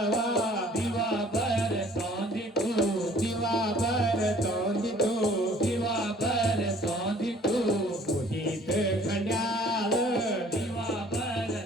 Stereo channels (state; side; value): normal; both; correlation 0.54